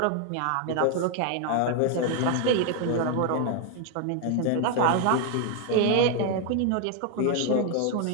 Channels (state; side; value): different; both; correlation 0.00